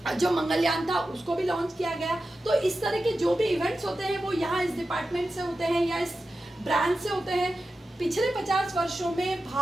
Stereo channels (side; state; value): both; normal; correlation 0.92